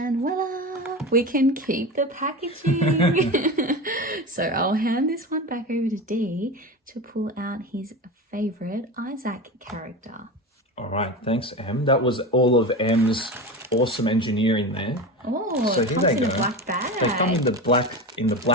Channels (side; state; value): both; normal; correlation 0.25